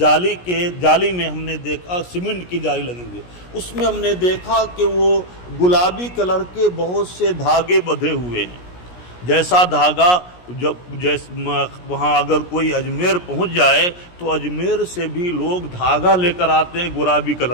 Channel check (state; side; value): late; right; 17 ms